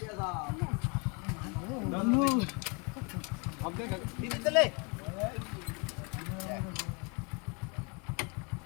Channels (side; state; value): right; quieter; 31.9 dB